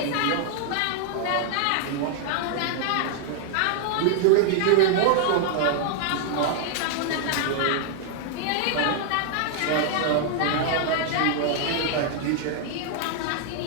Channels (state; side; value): different; both; correlation 0.00